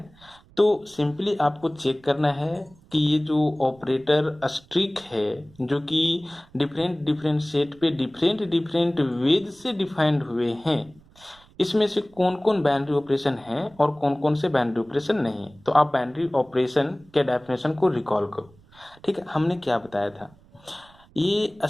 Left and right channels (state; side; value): noise; right; rumble, 27 dB below the sound